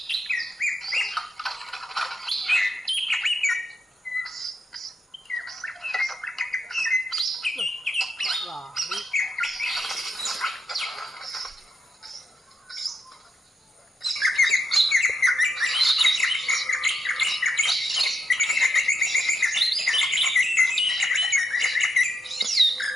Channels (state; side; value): normal; both; correlation 0.82